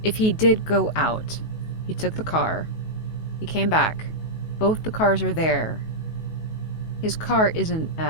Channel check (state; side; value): late; right; 19 ms